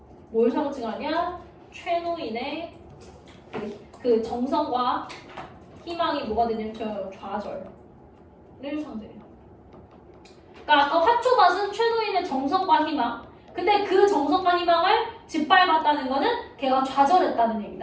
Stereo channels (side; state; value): both; identical; correlation 1.00